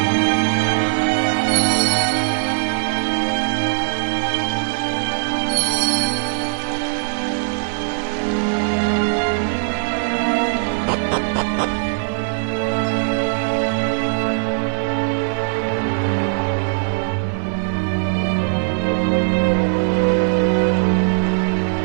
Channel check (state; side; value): silent; left; 60 dB below the other